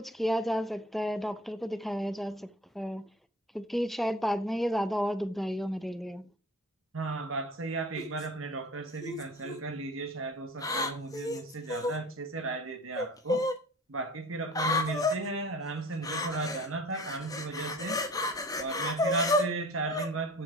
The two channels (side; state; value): both; normal; correlation 0.43